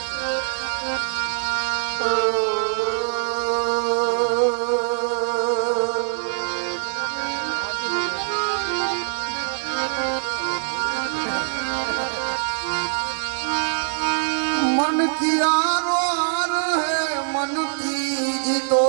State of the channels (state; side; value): silent; left; digital silence